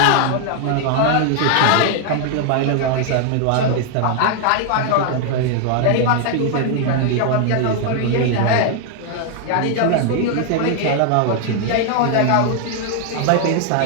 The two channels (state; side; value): different; both; correlation 0.00